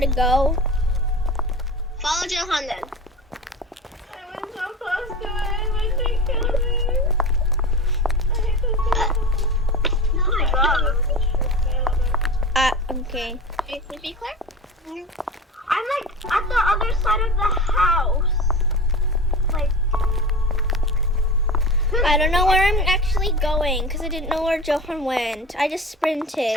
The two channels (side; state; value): both; normal; correlation 0.31